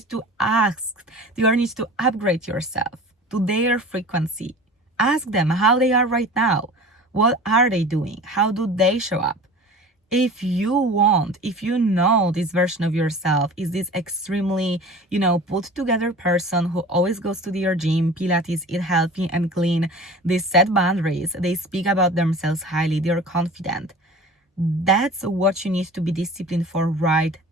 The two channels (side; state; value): both; normal; correlation 0.39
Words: to ask, you need to upgrade yourself. to their frequency. Ask them how they are right now. What are they doing? How do they show up? If you know this version of yourself is this extremely, put together person who always goes to their gym, Pilates, eat healthy and clean, they set boundaries, they speak about themselves highly, they're confident. That's what you need to be disciplined for right